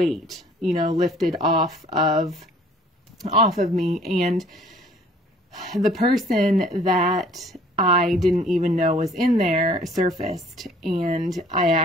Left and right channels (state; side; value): normal; both; correlation 0.55